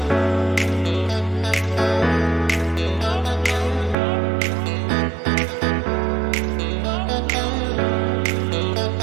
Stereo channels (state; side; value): drops out; left; at 4.0 s